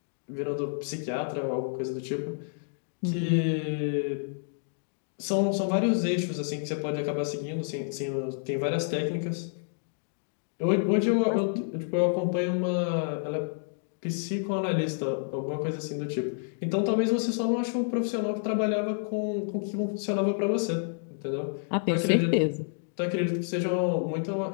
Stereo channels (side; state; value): right; silent; digital silence